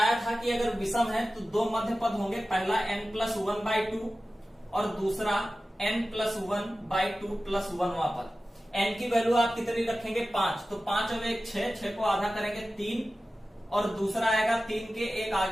था कि अगर विषम है तो दो मध्य पद होंगे, पहला n+1/2 और दूसरा n+1/2 + 1वां पद। n की वैल्यू आप कितनी रखेंगे, 5, तो 5 और 1 6 को आधा करेंगे 3, और दूसरा आएगा 3 के एक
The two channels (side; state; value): both; normal; correlation 0.95